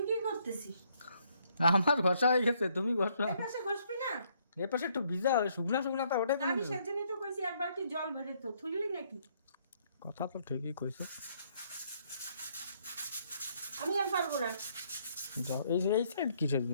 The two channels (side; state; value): both; inverted; correlation -0.69